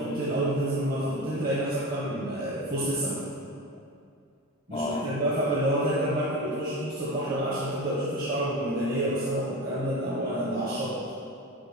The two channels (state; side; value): normal; both; correlation 0.27